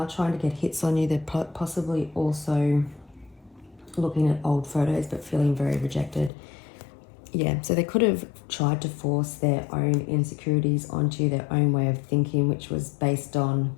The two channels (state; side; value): drops out; right; at 6.3 s